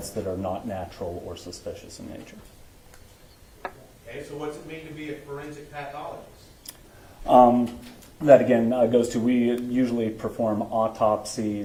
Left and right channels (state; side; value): identical; both; correlation 1.00